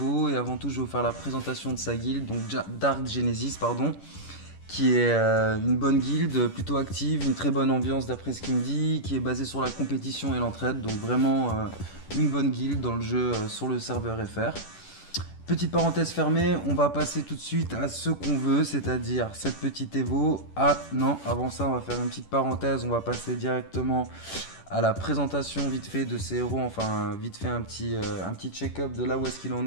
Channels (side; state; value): right; late; 10 ms